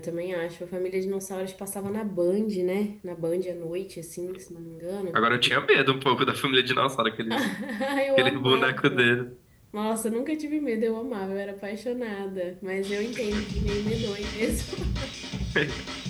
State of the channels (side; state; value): both; identical; correlation 1.00